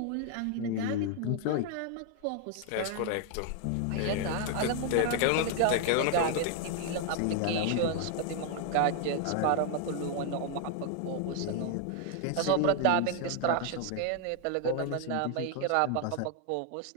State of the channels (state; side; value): different; both; correlation 0.00